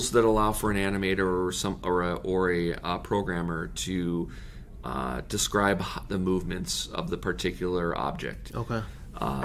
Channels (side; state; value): both; identical; correlation 1.00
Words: that allow for an animator or a programmer to describe the movements of the particular object. Okay.